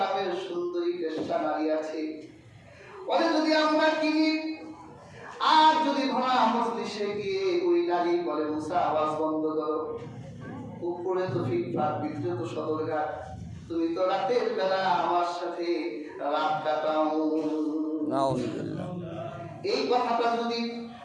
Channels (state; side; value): identical; both; correlation 1.00